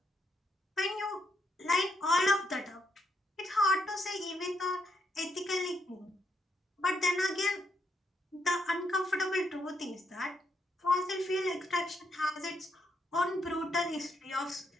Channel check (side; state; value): both; normal; correlation 0.77